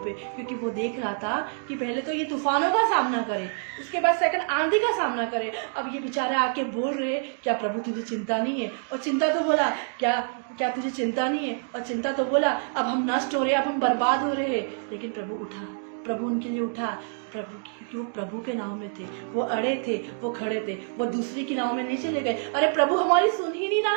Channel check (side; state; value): left; silent; 60 dB below the other